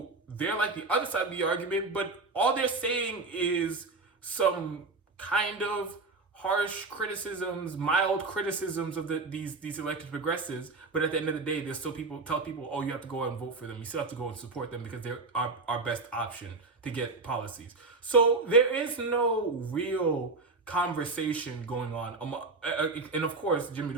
they're like the other side of the argument, but all they're saying is some kind of harsh criticisms, mild criticisms of these elected progressives, but at the end of the day, there's still tell people, oh, you have to go out and vote for them. You still have to go and support them because they're our best option to get policies. So there is no real conversation going on. And of course, Jimmy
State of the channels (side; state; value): left; quieter; 3.7 dB